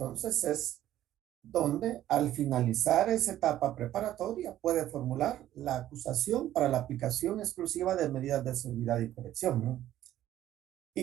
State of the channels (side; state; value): left; quieter; 12.9 dB